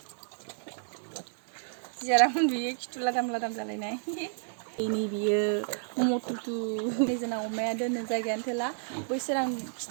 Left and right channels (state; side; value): silent; left; digital silence